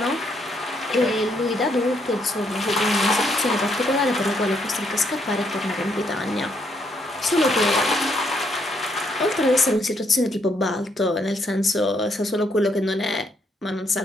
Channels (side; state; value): both; normal; correlation 0.73